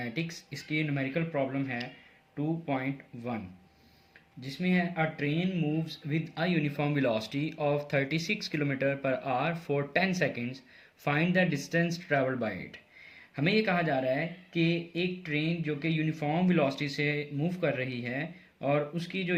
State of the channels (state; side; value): identical; both; correlation 1.00